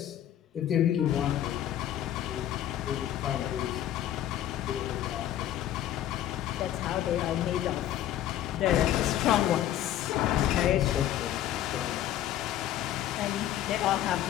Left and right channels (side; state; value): right; quieter; 12.0 dB